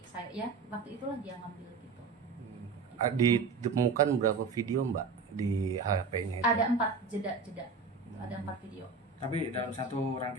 saya ya waktu itulah dia ngambil gitu. Ditemukan berapa video Mbak di HP-nya itu? Ada 4 jeda, ada 4 video. Tapi dalam satu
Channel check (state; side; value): quieter; left; 4.7 dB